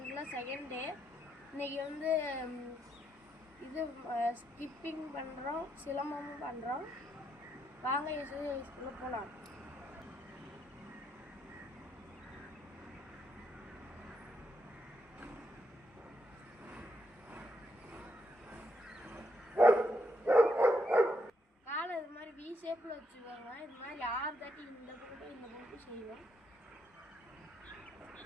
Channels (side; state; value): both; normal; correlation 0.78